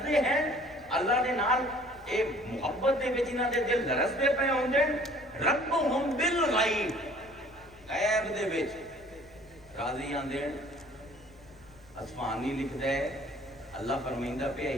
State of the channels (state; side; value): noise; left; rumble, 25 dB below the sound